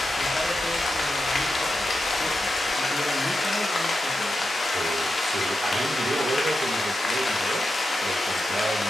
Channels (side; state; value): both; normal; correlation 0.89